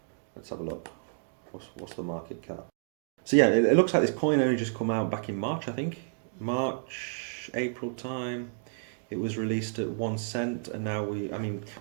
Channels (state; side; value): silent; left; digital silence